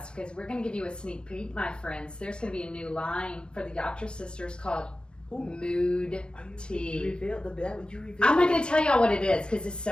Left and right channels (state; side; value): late; right; 0.055 ms